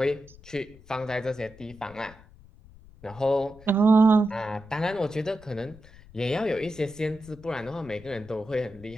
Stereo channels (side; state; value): left; noise; rumble, 22 dB below the sound